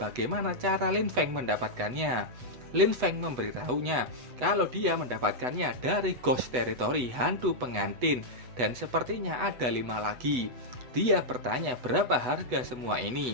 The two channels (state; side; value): late; left; 8.0 ms